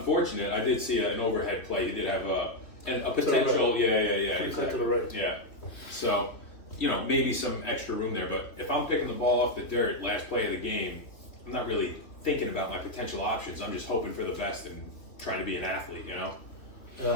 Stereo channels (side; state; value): right; late; 3.2 ms